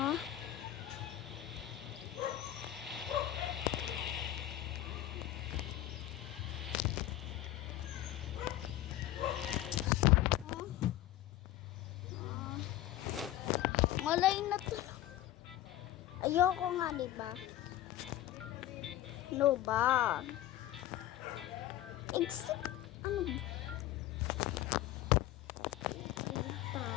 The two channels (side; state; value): right; quieter; 13.8 dB